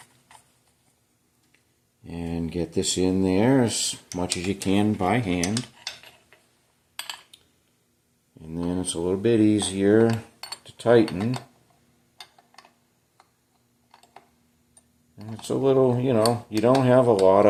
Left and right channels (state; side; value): identical; both; correlation 1.00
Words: And get this in there as much as you can by hand. And then it's a little bit easier to tighten. And it's a little, you know, you don't have a lot